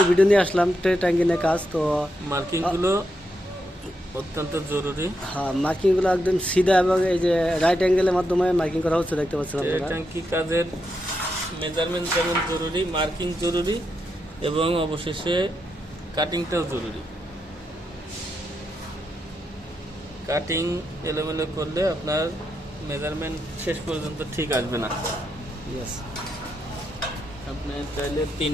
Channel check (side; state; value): both; normal; correlation 0.83